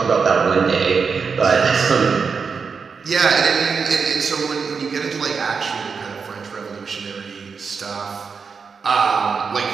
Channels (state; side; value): quieter; left; 5.5 dB